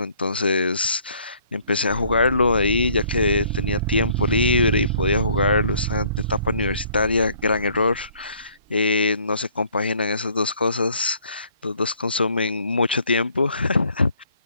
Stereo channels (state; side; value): inverted; both; correlation -0.60